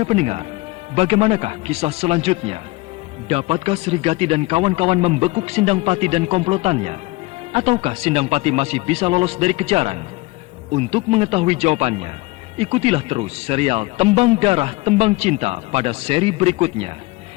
pendengar, bagaimanakah kisah selanjutnya? Dapatkah Srigati dan kawan-kawan membekuk Sindangpati dan komplotannya? Ataukah Sindangpati masih bisa lolos dari kejaran? Untuk mengetahui jawabannya, ikutilah terus serial Tembang Darah Tembang Cinta pada seri berikutnya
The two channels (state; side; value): quieter; right; 22.1 dB